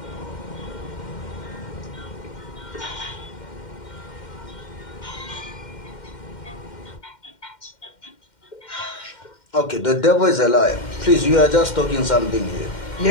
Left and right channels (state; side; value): late; right; 2.1 ms